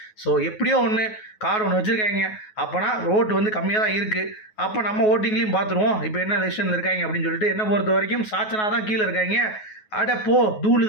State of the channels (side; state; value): right; late; 9.4 ms